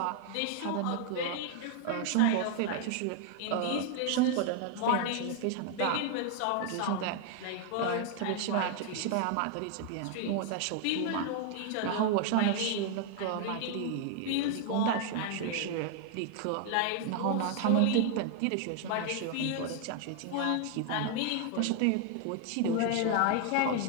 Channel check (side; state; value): both; different; correlation 0.00